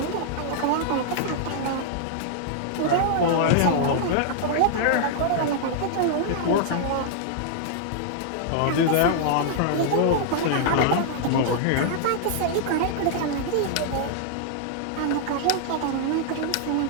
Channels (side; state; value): both; different; correlation -0.01